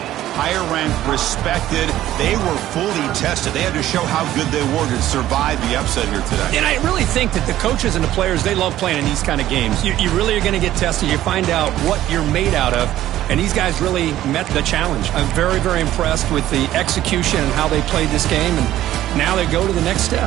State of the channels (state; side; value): quieter; left; 13.6 dB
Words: higher ranked, respected. They were fully tested. They had to show how good they were to survive the upset here today. And I really think that the coaches and the players, they love playing in these kind of games. You really are going to get tested. You find out what you're made out of. And these guys really met the challenge. I'm very, very impressed with the execution and how they played this game. And now they go to the next